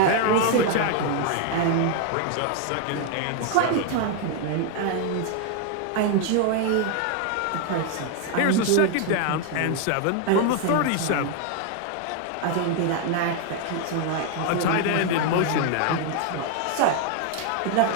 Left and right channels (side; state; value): both; different; correlation 0.00